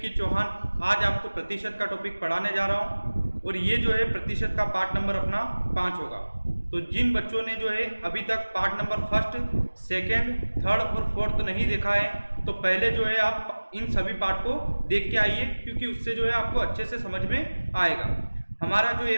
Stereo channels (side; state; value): both; inverted; correlation -1.00